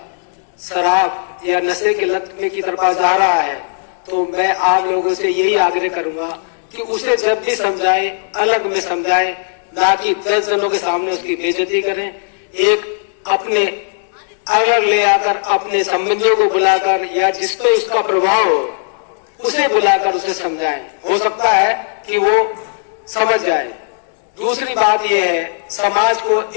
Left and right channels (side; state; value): right; silent; digital silence